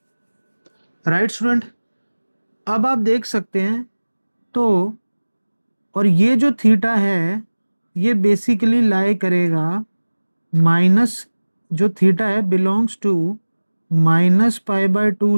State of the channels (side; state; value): both; inverted; correlation -1.00